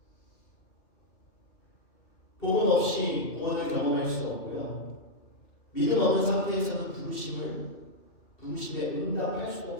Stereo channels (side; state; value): right; late; 2.5 ms